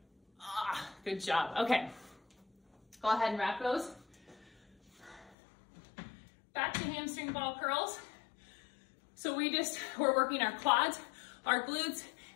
Good job. Okay. Go ahead and wrap those. Back to hamstring ball curls. So we're working our quads, our glutes,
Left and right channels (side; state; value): right; drops out; at 5.4 s